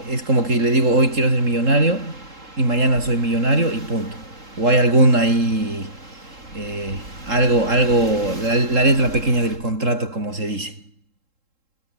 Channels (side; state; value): left; late; 3.7 ms